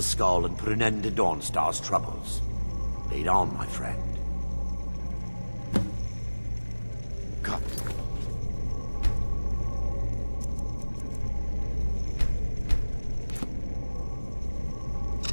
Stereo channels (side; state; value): both; inverted; correlation -1.00